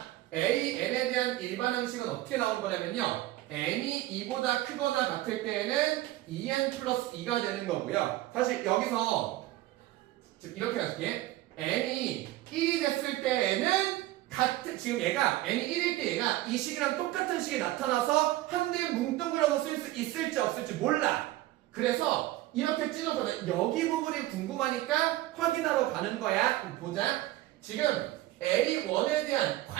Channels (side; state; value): left; quieter; 16.4 dB